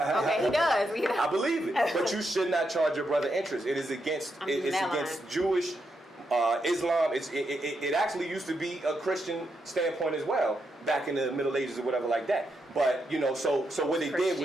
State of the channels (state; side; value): normal; both; correlation 0.82